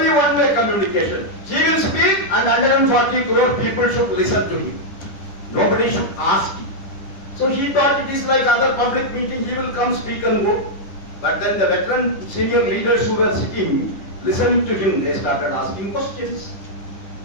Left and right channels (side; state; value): right; late; 10 ms